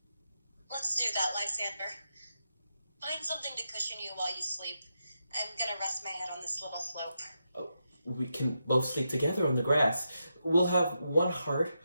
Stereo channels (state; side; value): inverted; both; correlation -0.85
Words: Let's do that, Lysander. Find something to cushion you while you sleep. I'm gonna rest my head on this little slope. Oh, we can both sleep together on the grass. We'll have one heart,